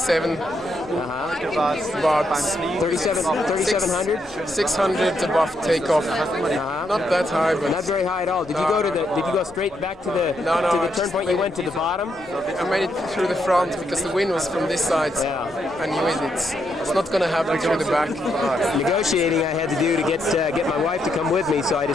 Uh-huh. About 3,700? 600 above takeoff. Uh-huh. Not that high, Not but very high at all. Did you go straight back to the turn point? You went to the bottom? I made it through the front because the wind was from this side. Yeah. I knew it's not going to happen through the back. Negotiating I had to do to get my wife to come with me, so I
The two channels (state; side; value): noise; right; rumble, 26 dB below the sound